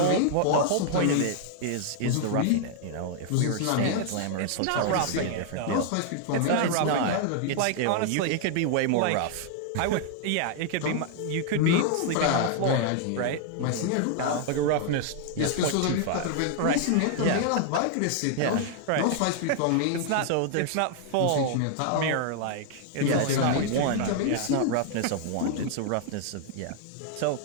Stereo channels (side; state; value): both; different; correlation 0.00